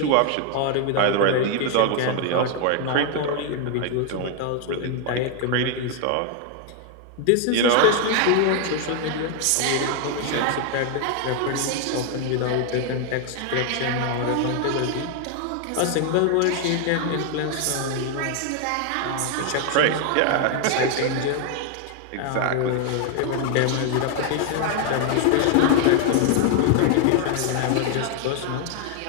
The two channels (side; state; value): both; different; correlation 0.00